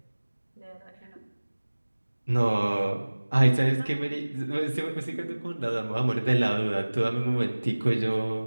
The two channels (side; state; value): both; inverted; correlation -1.00